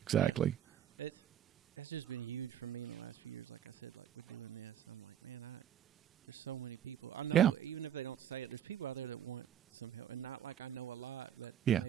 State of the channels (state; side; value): quieter; left; 10.2 dB